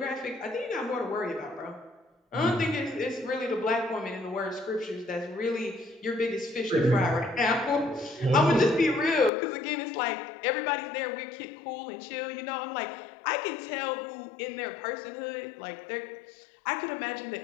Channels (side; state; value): right; drops out; at 9.3 s